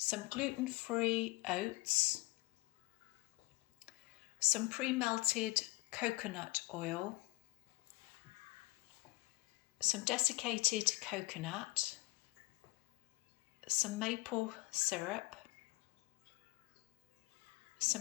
gluten-free oats, some pre-melted coconut oil, some desiccated coconut, some maple syrup,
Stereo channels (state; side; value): quieter; right; 22.7 dB